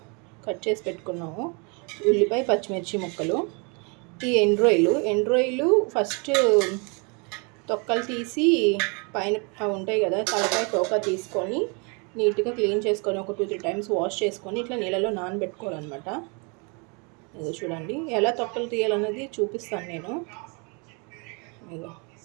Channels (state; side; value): quieter; left; 33.0 dB